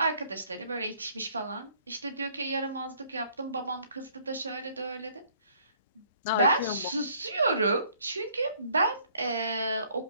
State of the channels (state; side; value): inverted; both; correlation -0.61